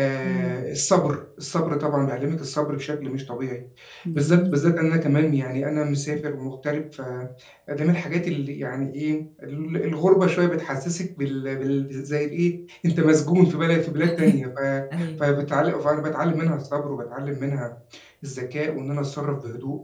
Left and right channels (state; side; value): identical; both; correlation 1.00